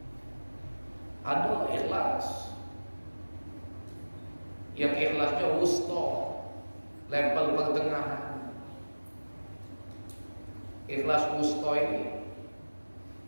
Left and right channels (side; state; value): both; inverted; correlation -1.00